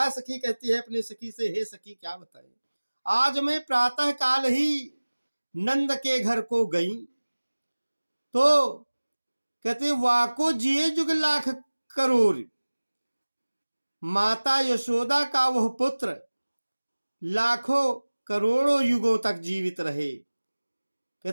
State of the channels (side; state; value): both; inverted; correlation -1.00